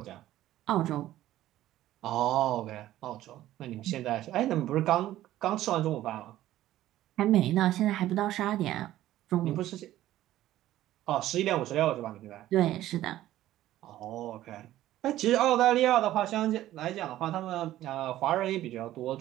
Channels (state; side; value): quieter; left; 14.1 dB